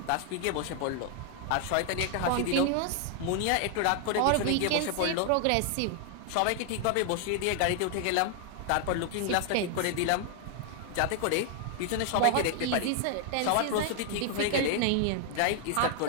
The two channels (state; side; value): different; both; correlation 0.00